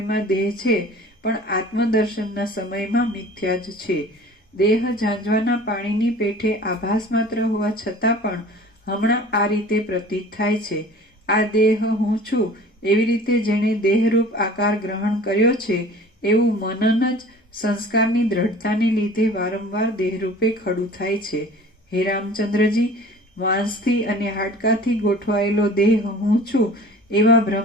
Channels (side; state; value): both; normal; correlation 0.44